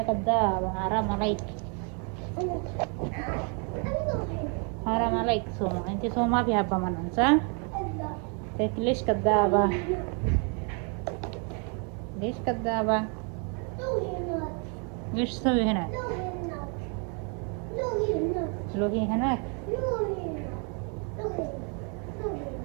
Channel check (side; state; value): left; quieter; 37.8 dB